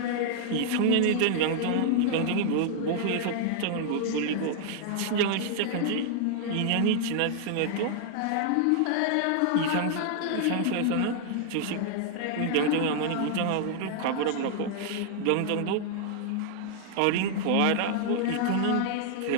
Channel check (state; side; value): different; both; correlation 0.00